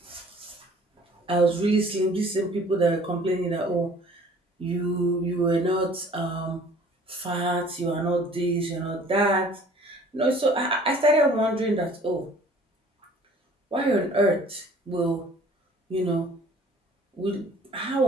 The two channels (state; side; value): normal; both; correlation 0.52